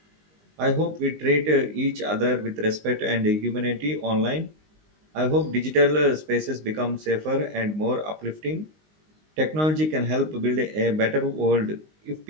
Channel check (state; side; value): late; left; 19 ms